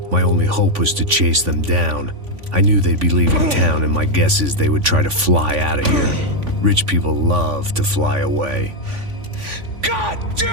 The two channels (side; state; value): left; late; 3.5 ms